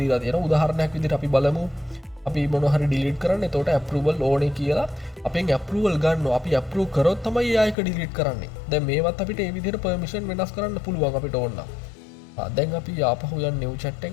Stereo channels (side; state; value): right; drops out; at 7.8 s